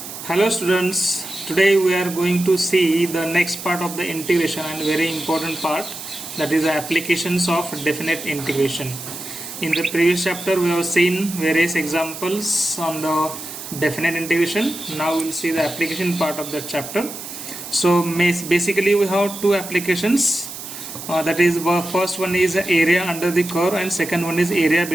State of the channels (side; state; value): right; noise; hiss, 10 dB below the sound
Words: Hello students, today we are going to see the next part of the integration and very important part, that is the applications of definite integration. In the previous chapter we have seen various examples on the definite integration. Now we will see the application part of that chapter. So basically we have two applications, that is first one is area under the curve and second one is area